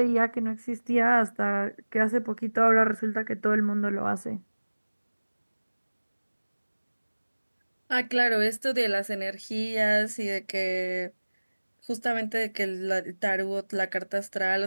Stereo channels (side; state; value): both; inverted; correlation -1.00